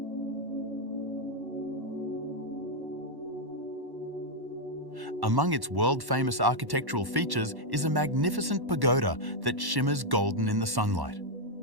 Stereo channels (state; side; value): late; left; 1.1 ms